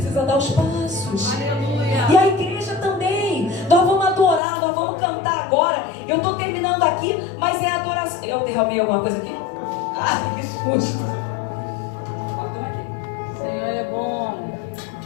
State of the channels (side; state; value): right; drops out; at 4.4 s